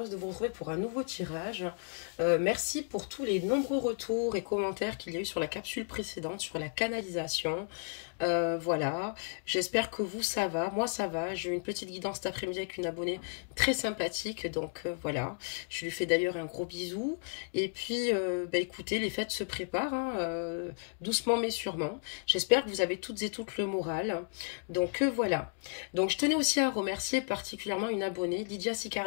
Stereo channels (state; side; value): silent; right; 56 dB below the other